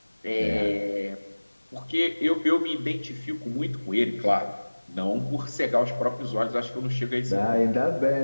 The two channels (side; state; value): both; inverted; correlation -1.00